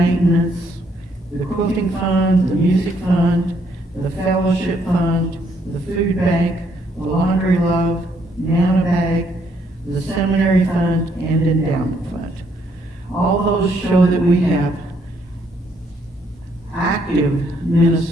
the quilting fund, the music fund, the fellowship fund, the food bank, the laundry love, Nana bag, the seminary fund, and endowment fund. All those show that we have active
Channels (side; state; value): both; normal; correlation 0.71